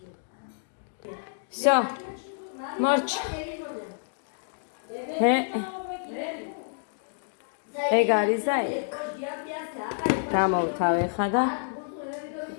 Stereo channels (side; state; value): right; silent; digital silence